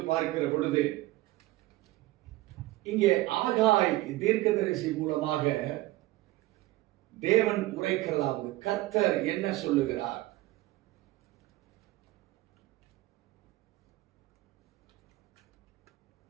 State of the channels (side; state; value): left; quieter; 17.8 dB